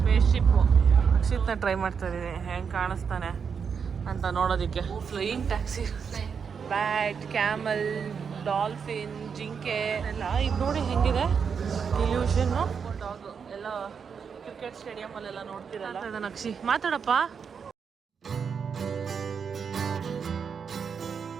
ಶಿಪ್ಪು ಅಕ್ಷಿತ್ನ ಟ್ರೈ ಮಾಡ್ತಾ ಇದ್ದೀನಿ, ಹೆಂಗೆ ಕಾಣಿಸ್ತಾನೆ ಅಂತ ನೋಡೋದಕ್ಕೆ. Flying taxi, bat, camel, dolphin, ಜಿಂಕೆ ಎಲ್ಲ ಇದು ನೋಡಿ ಹೆಂಗಿದೆ ಇಲ್ಯೂಷನ್ನು. ಡಾಗು ಎಲ್ಲ ಕ್ರಿಕೆಟ್ ಸ್ಟೇಡಿಯಮಲ್ಲೆಲ್ಲ ನೋಡ್ತಿರಲ್ಲ. ಅಕ್ಷಿ ಮಾತಾಡಪ್ಪ.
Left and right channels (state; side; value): quieter; left; 6.4 dB